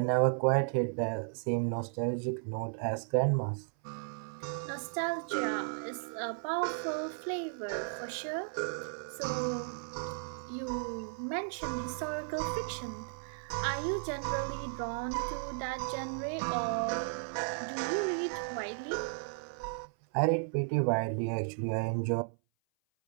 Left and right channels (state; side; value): silent; left; 55 dB below the other